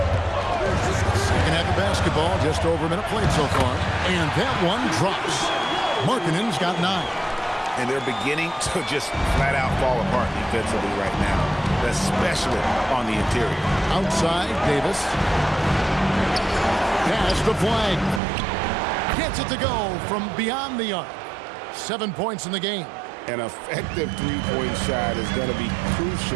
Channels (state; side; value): drops out; left; at 18.2 s